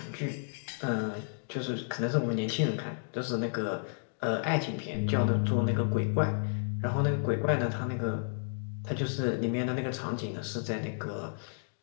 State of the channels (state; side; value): silent; right; digital silence